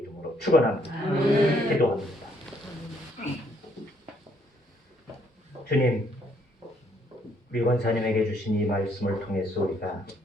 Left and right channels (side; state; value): both; normal; correlation 0.68